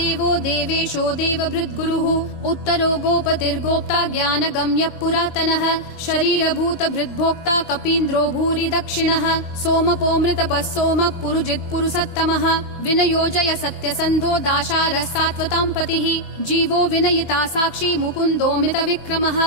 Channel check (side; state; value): right; late; 22 ms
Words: देवेशो देवभृद्गुरुः उत्तरो गोपतिर्गोप्ता ज्ञानगम्यः पुरातनः शरीरभूतभृद्भोक्ता कपीन्द्रो भूरि दक्षिणः सोमपोऽमृतपः सोमः पुरुजित् पुरुषोत्तमः विनयोजय सत्यसन्धो दाशारः सात्वतां पतिः जीवो विनयिता साक्षी मुकुन्दोमित विक्रमः